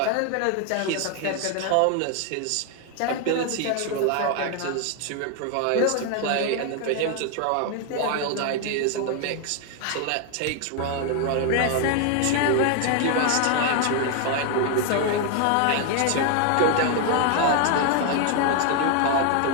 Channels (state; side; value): different; both; correlation 0.01